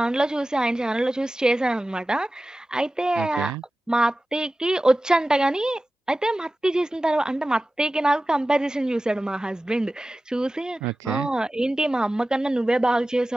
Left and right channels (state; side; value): normal; both; correlation 0.96